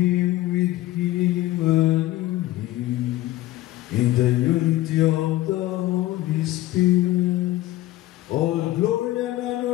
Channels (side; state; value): right; quieter; 16.3 dB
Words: with him, and in the unity of the Holy Spirit, all glory and